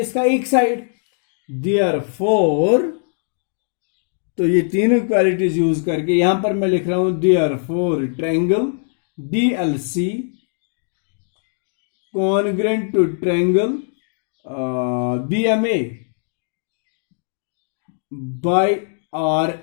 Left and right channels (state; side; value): silent; right; digital silence